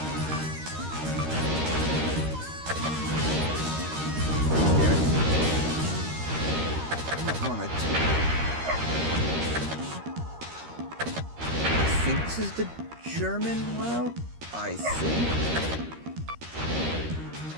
damn it. Come on, I think this is the German route? I think.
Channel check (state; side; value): late; left; 13 ms